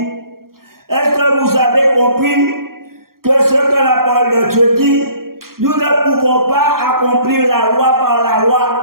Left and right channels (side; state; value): left; late; 0.93 ms